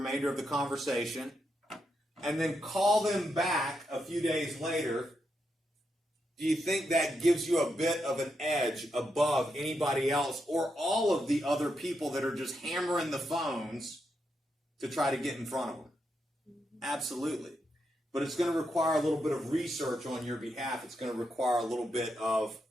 of the conversation, and then call them back a few days later, do you think that gives you a bit of an edge above anybody else or all of the other people that are just hammering the phones to try to get in front of them? Absolutely. But it's going to require a little bit of research on your behalf. It's going to require a little bit of,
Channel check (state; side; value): normal; both; correlation 0.83